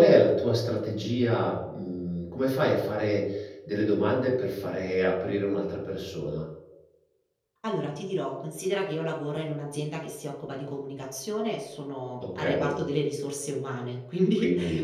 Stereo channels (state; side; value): identical; both; correlation 1.00